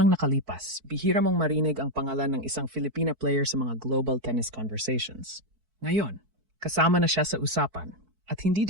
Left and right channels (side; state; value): left; late; 4.6 ms